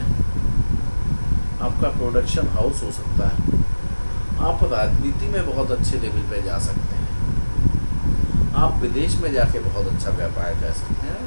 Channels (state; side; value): inverted; both; correlation -1.00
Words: आपका प्रोडक्शन हाउस हो सकता है, आप राजनीति में बहुत अच्छे लेवल पे जा सकते हैं, आप विदेश में जाके बहुत अच्छा व्यापार कर सकते हैं।